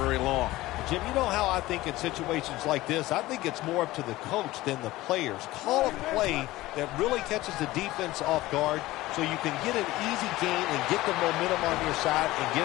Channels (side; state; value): right; quieter; 17.8 dB